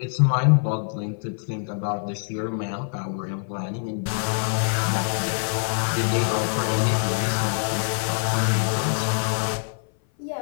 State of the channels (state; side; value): silent; right; 57 dB below the other